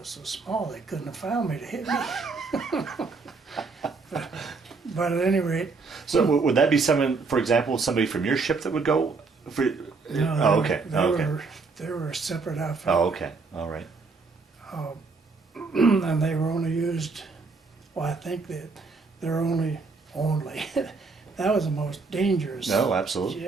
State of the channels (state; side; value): quieter; left; 4.3 dB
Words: so small they couldn't have found me to hit me. but at any rate, So would that be someone, for example, somebody from your ship that would go? For, no, oh, okay, okay. They were a separate outfit. Oh, okay, all right. And they were only used, well, I think that they're only, that was the most dangerous. No, absolutely.